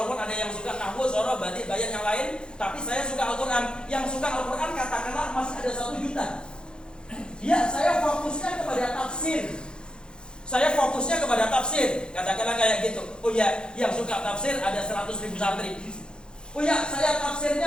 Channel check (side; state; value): right; late; 0.049 ms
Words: ada yang suka nahwu, soroh, batik, bayan yang lain, tapi saya suka Al-Quran. Yang suka Al-Quran katakanlah masih ada 1 juta. Ya, saya fokusnya kepada tafsir. Katakanlah kayak gitu. Oh ya, yang suka tafsir ada 100.000 santri. Oh ya, saya